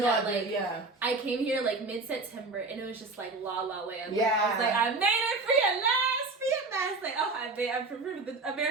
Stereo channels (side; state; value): left; quieter; 3.5 dB